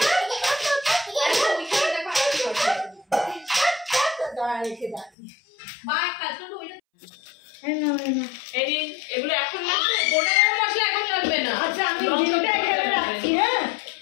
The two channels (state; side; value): drops out; right; at 5.1 s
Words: এগুলো এখন লাগবে, গোটা গরম মশলা এখন লাগবে না। আচ্ছা আমি ডিমটা এখানে রাখছি হ্যাঁ